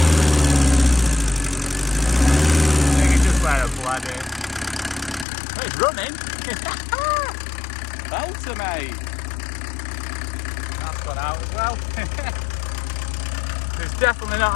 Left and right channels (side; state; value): right; drops out; at 5.2 s